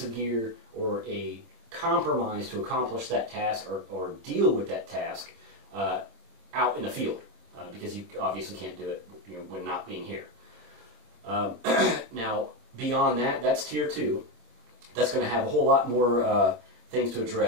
of gear or a compromise to accomplish that task or deal with that task out in the field, because you obviously can't do it when not being here. Now, beyond that, that's tier 2. That's going to have a whole lot more things to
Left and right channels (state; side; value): late; left; 25 ms